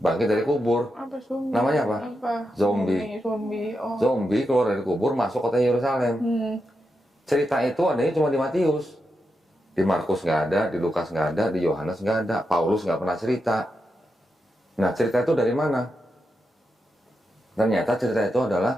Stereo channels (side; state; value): both; normal; correlation 0.86